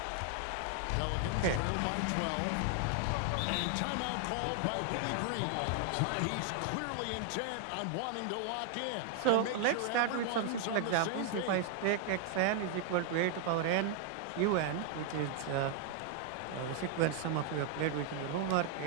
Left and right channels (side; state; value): both; different; correlation 0.00